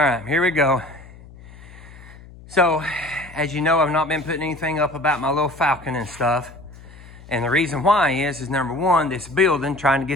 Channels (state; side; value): noise; left; hum, 20 dB below the sound